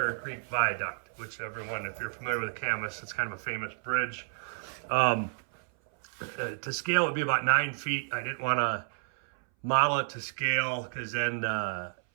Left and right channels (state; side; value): silent; left; 57 dB below the other